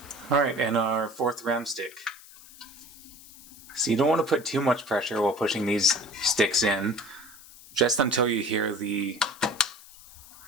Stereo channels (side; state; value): left; noise; hiss, 20 dB below the sound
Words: Alright, and our fourth RAM stick. So you don't want to put too much pressure while pushing these sticks in, just until you hear the